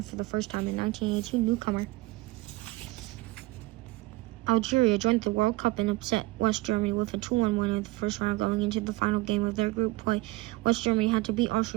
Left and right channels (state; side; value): quieter; left; 20.7 dB